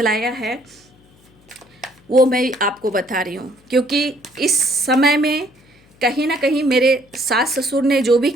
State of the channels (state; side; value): noise; left; hum, 30 dB below the sound